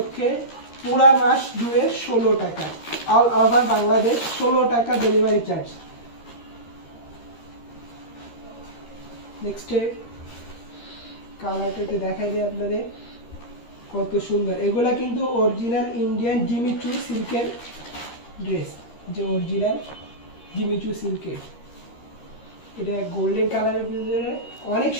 পুরা মাস জুড়ে 16 টাকা, অল ওভার বাংলাদেশ 16 টাকা ডেলিভারি চার্জ। নেক্সট কালারটা একটু দেখাই দিই আপনাদের, কত সুন্দর। এগুলা কিন্তু অরিজিনাল ইন্ডিয়ান জিমিচু সিল্কের ড্রেস, যে অরিজিনাল জিমিচু সিল্কের। এটা গোল্ডেন কালারের ভিতরে অনেক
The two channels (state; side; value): late; right; 13 ms